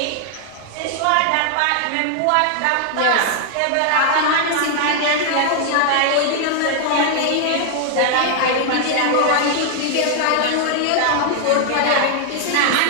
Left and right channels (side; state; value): both; different; correlation 0.00